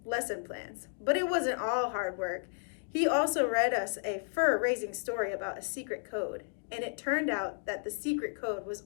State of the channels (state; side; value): silent; right; digital silence